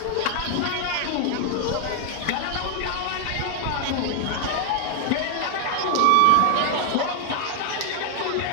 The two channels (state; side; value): different; both; correlation 0.00